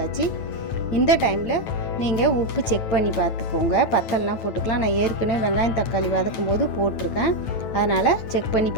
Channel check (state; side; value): late; right; 9.1 ms